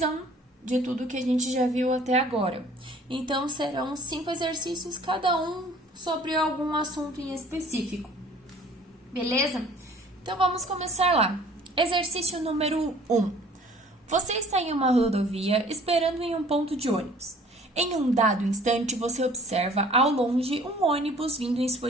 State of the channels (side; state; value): both; normal; correlation 0.53